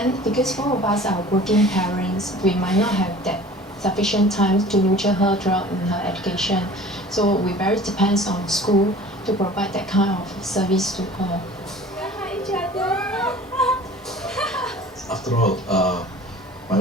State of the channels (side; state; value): both; normal; correlation 0.44